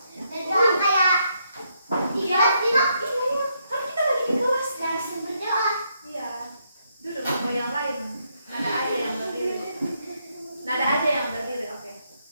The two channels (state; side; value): inverted; both; correlation -0.76